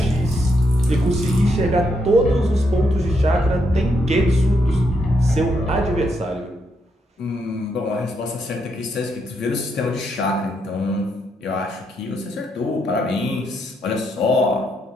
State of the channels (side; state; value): both; normal; correlation 0.78